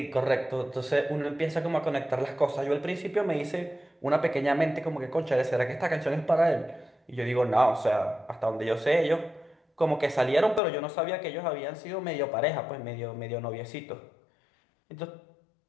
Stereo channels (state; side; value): drops out; right; at 10.6 s